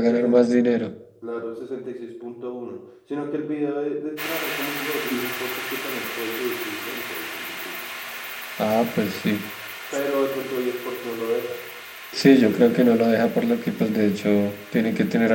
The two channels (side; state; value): both; identical; correlation 1.00